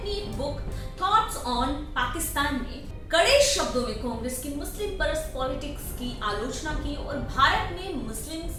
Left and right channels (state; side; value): identical; both; correlation 1.00